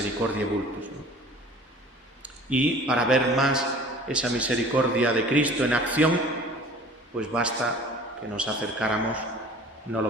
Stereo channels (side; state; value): both; normal; correlation 0.46